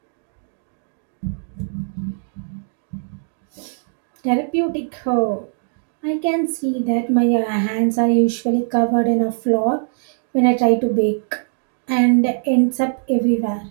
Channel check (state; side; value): silent; left; digital silence